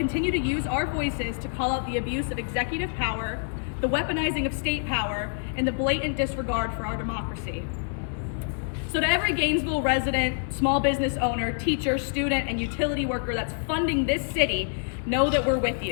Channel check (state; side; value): silent; right; digital silence